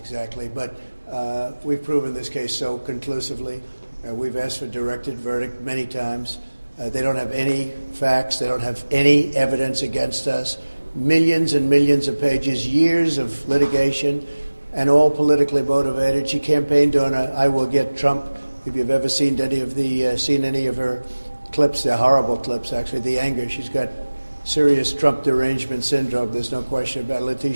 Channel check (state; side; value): inverted; both; correlation -1.00